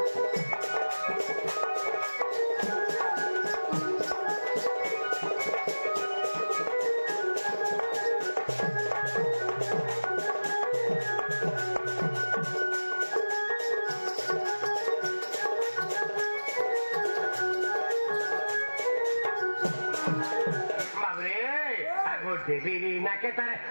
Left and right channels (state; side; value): inverted; both; correlation -1.00